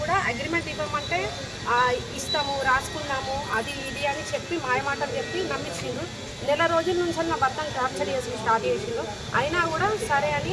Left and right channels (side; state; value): both; identical; correlation 1.00